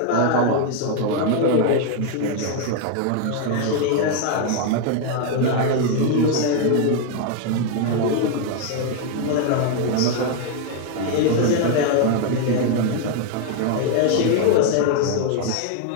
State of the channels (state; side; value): different; both; correlation 0.00